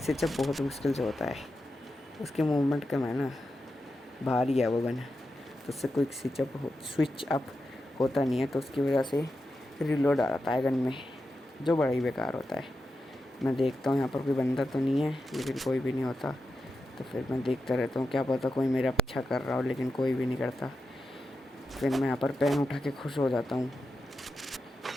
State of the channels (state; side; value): normal; both; correlation 0.89